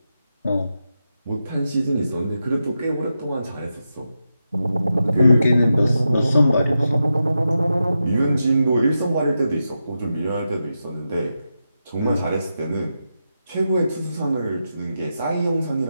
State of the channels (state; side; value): inverted; both; correlation -0.88